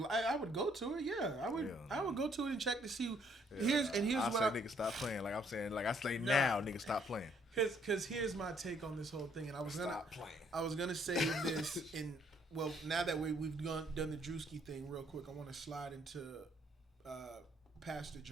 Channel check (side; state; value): both; normal; correlation 0.66